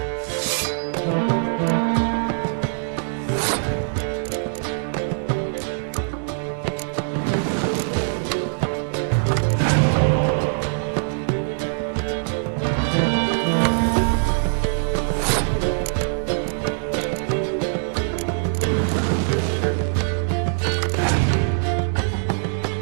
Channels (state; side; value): silent; left; digital silence